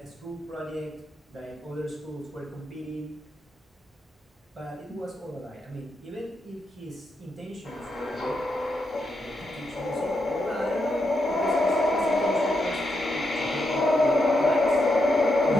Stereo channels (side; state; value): both; normal; correlation 0.83